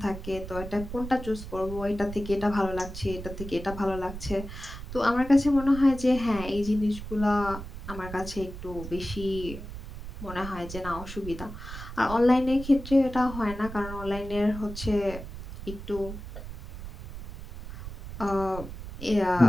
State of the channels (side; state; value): right; noise; rumble, 10 dB below the sound